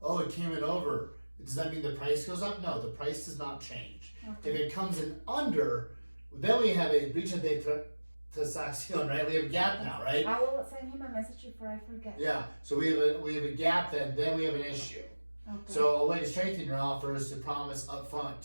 it came in over. Does that mean the price goes up? No, the price does not change. Okay. If it comes in under, then we have a breach of tasación, right? We have a gap now, right? I will send him a message before I forget. Yeah. So we have a gap, then we have an issue. Okay. So a way to strengthen your offer is to promise up front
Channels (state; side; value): inverted; both; correlation -1.00